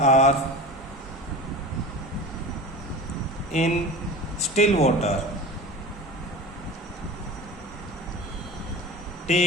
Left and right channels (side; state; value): both; normal; correlation 0.34